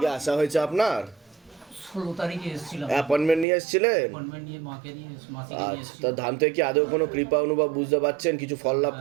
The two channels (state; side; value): drops out; left; at 3.5 s